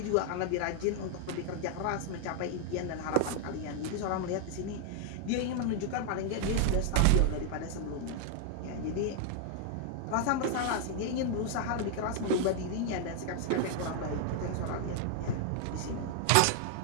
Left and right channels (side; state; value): both; different; correlation 0.00